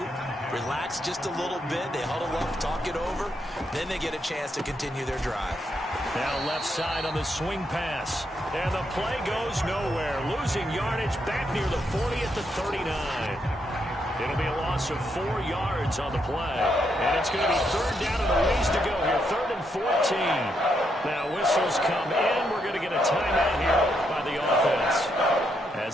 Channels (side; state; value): both; normal; correlation 0.78